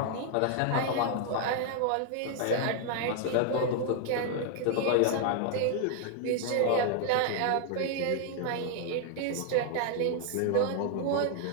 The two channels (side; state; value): both; different; correlation 0.00